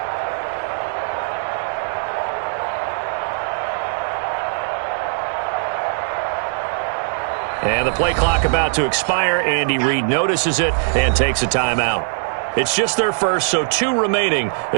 And the play clock about to expire. Andy Reid notices it and takes a timeout. It's just their first, so 2 remaining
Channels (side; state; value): left; silent; digital silence